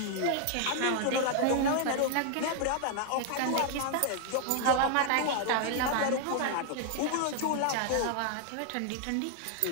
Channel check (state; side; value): different; both; correlation 0.00